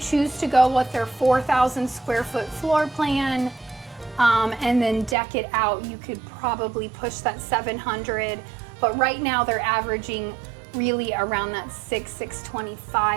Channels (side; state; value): left; drops out; at 5.2 s